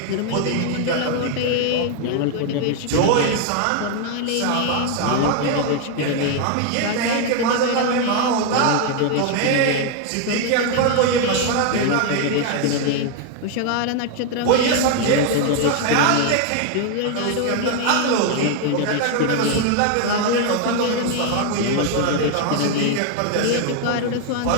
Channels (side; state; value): both; different; correlation 0.00